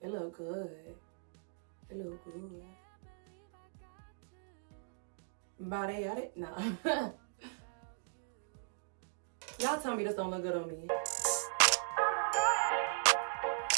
it look good. It look good. Body at it? Nah. Y'all tell me this don't look good on me.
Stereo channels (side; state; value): left; silent; digital silence